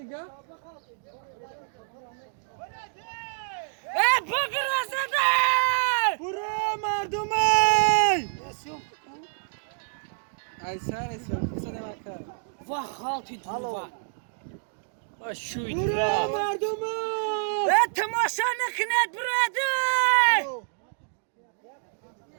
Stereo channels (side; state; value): left; silent; digital silence